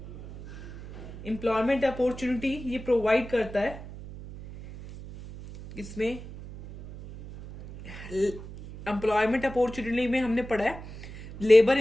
एम्प्लॉयमेंट अपॉर्चुनिटी ये प्रोवाइड करता है. इसमें एम्प्लॉयमेंट अपॉर्चुनिटी में हमने पढ़ा है लेबर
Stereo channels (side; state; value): right; noise; hum, 13 dB below the sound